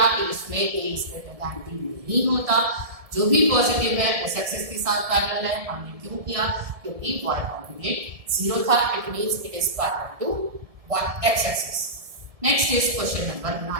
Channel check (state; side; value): late; left; 1.7 ms